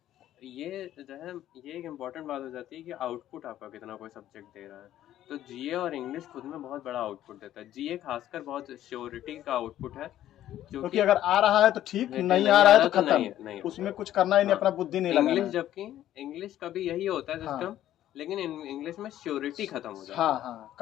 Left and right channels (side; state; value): right; quieter; 12.5 dB